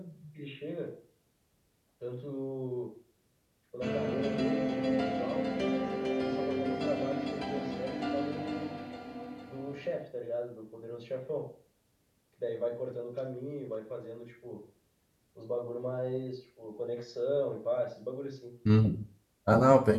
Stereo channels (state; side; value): identical; both; correlation 1.00